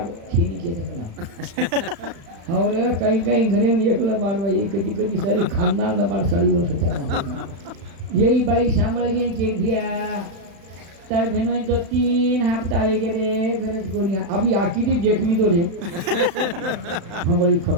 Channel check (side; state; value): left; late; 35 ms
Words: छीनी के देला और कई कई घरे में एकला बारवा ये कदी कदी सारी खानदान ना बार सारी वर्ष करना यही बाई सांभळ गई के दिया तार भेनोई तो 3 हफ्ता वेगे रे गरज कोनी अभी आकी दी देख ली तो रे हंगोली